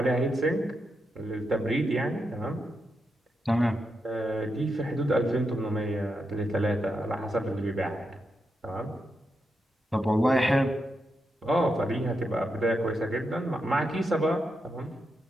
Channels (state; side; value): normal; both; correlation 0.85